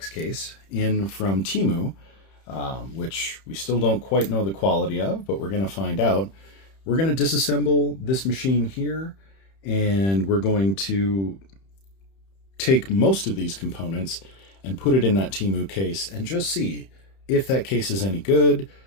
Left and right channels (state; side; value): late; right; 31 ms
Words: case in from Temu, which we still don't quite know the quality of, but we're going to find out. We're going to disassemble this machine here, and we're going to take most of these components and put it in that Temu case and just see if that case is any good.